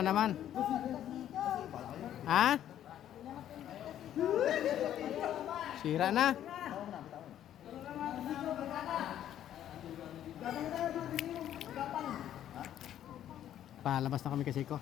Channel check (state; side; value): quieter; right; 11.2 dB